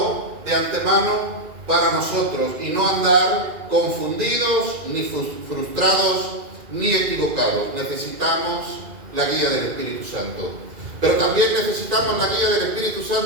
de antemano para nosotros, y no andar confundidos, ni frustrados, ni equivocados. Necesitamos la guía del Espíritu Santo. Pero también necesitamos la guía del Espíritu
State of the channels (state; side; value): late; left; 2.4 ms